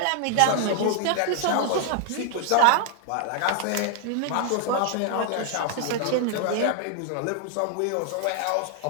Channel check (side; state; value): both; different; correlation 0.00